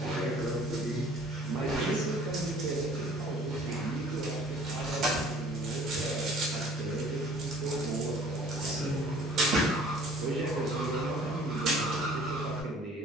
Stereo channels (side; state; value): both; normal; correlation 0.52